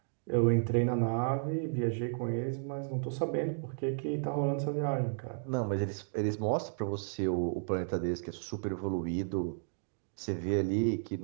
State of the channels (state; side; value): silent; left; digital silence